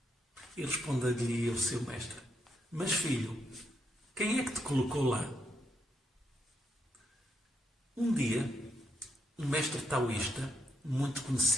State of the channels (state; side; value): normal; both; correlation 0.79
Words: E responderia o seu mestre: Mas filho, quem é que te colocou lá? Um dia, um mestre taoísta, muito